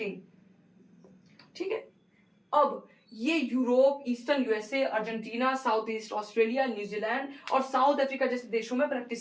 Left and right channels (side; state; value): both; identical; correlation 1.00